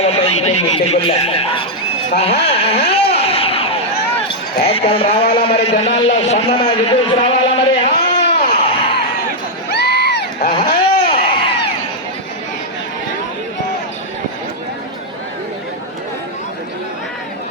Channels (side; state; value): both; normal; correlation -0.03